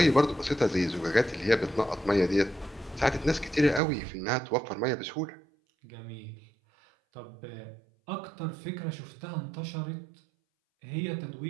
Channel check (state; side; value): drops out; left; at 3.8 s